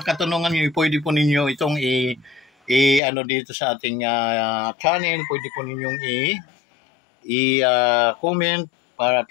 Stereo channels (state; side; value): drops out; right; at 3.0 s